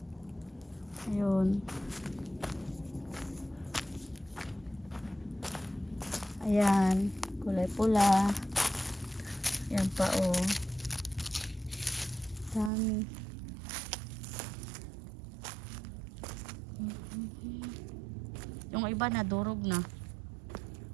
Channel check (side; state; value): left; drops out; at 12.7 s